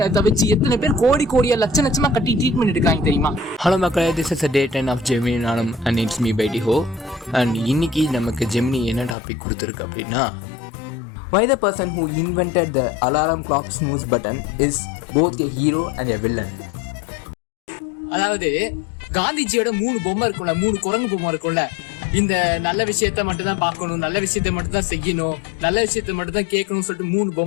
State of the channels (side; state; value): right; drops out; at 9.2 s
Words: வச்சு எத்தனை பேர் கோடியா லட்சமா கட்டி ட்ரீட்மெண்ட் எடுக்காங்க தெரியுமா? ஹலோ மக்களே, this is day 10 of Gemini நானும் அண்ட் இட்ஸ் மீ பை டிஹோ. அண்ட் இன்னைக்கு நமக்கு ஜெமினி என்ன டாபிக் கொடுத்துருக்கு அப்படின்னா, why the person who invented the alarm clock snooze button is both a hero and a villain. அதாவது காந்திஜியோட 3 பொம்மை இருக்கும்ல, 3 குரங்கு பொம்மை இருக்கும்ல. இந்த நல்ல விஷயத்த மட்டும் தான் பார்க்கணும், நல்ல விஷயத்த மட்டும் தான் செய்யணும், நல்ல விஷயத்த மட்டும் தான் கேட்கணும்னு சொல்லிட்டு 3